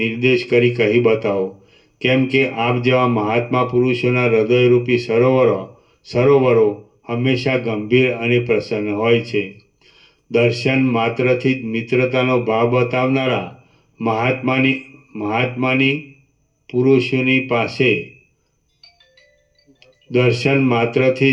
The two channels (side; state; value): both; identical; correlation 1.00